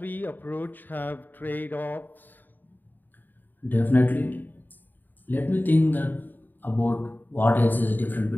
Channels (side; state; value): right; late; 0.089 ms